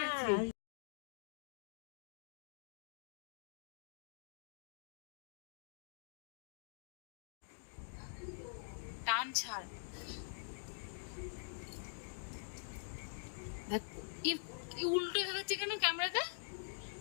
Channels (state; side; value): silent; right; digital silence